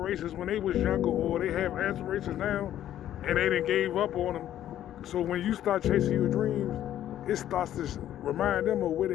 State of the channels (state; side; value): quieter; right; 11.8 dB